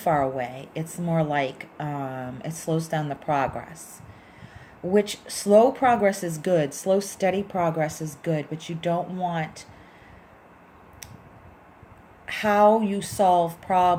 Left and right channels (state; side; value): identical; both; correlation 1.00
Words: away. It's more like it slows down the progress. Which, slow progress is good. Slow, steady progress is good, but you don't want how you solve